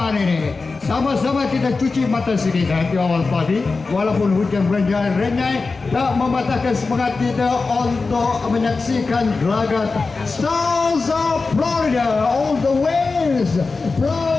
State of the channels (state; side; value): quieter; right; 4.1 dB